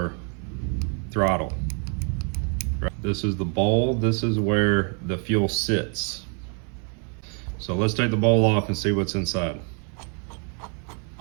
throttle. This is the bowl. This is where the fuel sits. So let's take the bowl off and see what's inside.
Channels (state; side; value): quieter; left; 39.4 dB